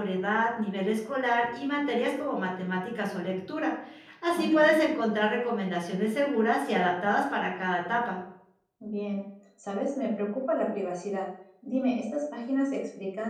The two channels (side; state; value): both; identical; correlation 1.00